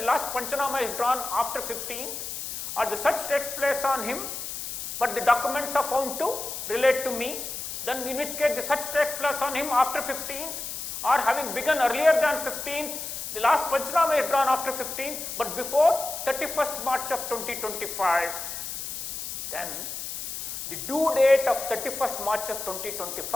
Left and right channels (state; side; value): noise; left; hiss, 6 dB below the sound